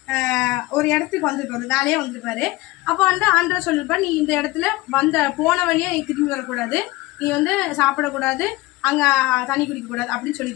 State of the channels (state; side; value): quieter; right; 19.9 dB